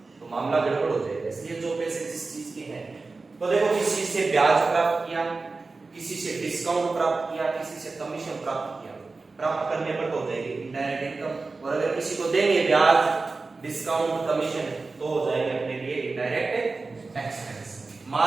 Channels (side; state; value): left; quieter; 3.8 dB